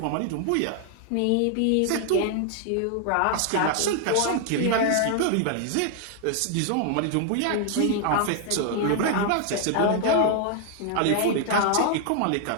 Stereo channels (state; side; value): different; both; correlation 0.00